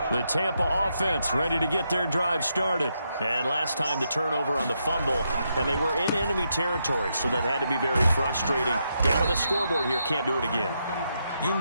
The Tampa offense ready to get their drive started. And last time the turnover on the fumble, and they were in enemy territory, so that had to be very frustrating. Down on the scoreboard here, can't do it again. You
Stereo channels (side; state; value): both; inverted; correlation -0.81